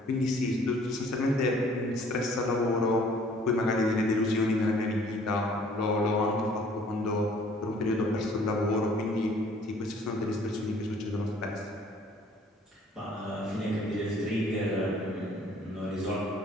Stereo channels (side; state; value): both; normal; correlation 0.57